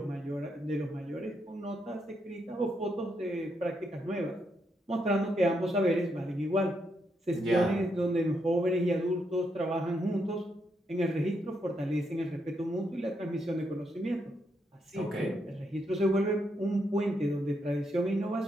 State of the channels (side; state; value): both; normal; correlation 0.79